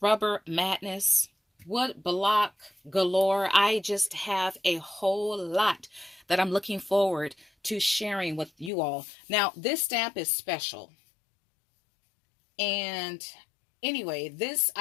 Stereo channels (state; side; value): drops out; right; at 8.7 s